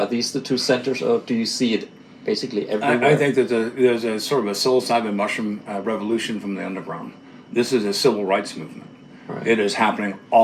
these the 2 centers, or do you see it basically everywhere? I think that there's a sort of a psilocybin mushroom revolution from the underground. This is a civil rights movement. Right. It is happening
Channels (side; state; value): both; identical; correlation 1.00